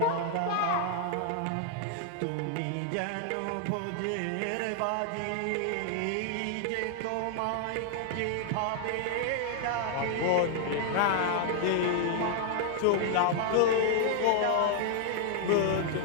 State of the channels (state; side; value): different; both; correlation 0.00